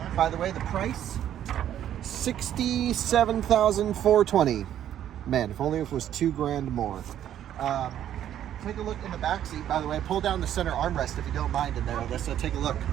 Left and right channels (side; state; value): left; quieter; 10.9 dB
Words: By the way, the price, $67,420. Man, if only if it was $2,000 more. Take a look in the back seat. By the way, pull down the center armrest if you don't mind in there, Alyssa. Take a look.